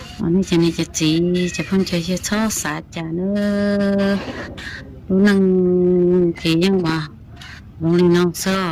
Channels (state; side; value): identical; both; correlation 1.00